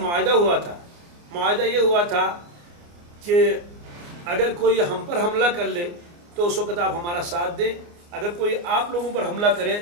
ہوا تھا. معاہدہ یہ ہوا تھا کہ اگر کوئی ہم پر حملہ کر لے تو اس وقت آپ ہمارا ساتھ دیں، اگر کوئی آپ لوگوں پر حملہ کرے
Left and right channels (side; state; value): left; late; 29 ms